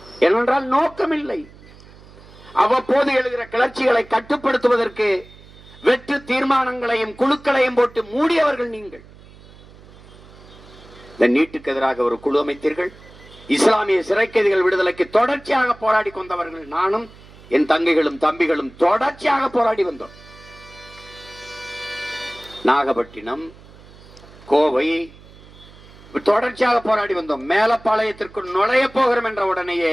ஏனென்றால் நோக்கம் இல்லை. அவ்வப்போது எழுகிற கிளர்ச்சிகளை கட்டுப்படுத்துவதற்கு வெற்று தீர்மானங்களையும் குழுக்களையும் போட்டு மூடியவர்கள் நீங்கள். இந்த நீட்டுக்கு எதிராக ஒரு குழு அமைத்தீர்கள். இஸ்லாமிய சிறை கைதிகள் விடுதலைக்கு தொடர்ச்சியாக போராடி கொண்டவர்கள் நானும் என் தங்கைகளும் தம்பிகளும் தொடர்ச்சியாக போராடி வந்தோம். நாகப்பட்டினம், கோவை தொடர்ச்சியாக போராடி வந்தோம். மேலப்பாளையத்திற்கு நுழைய போகிறோம் என்ற உடனேயே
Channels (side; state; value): right; noise; hum, 22 dB below the sound